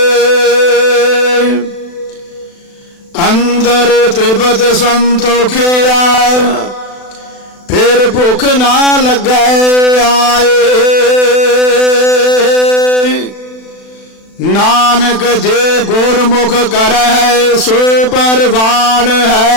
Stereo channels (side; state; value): right; late; 36 ms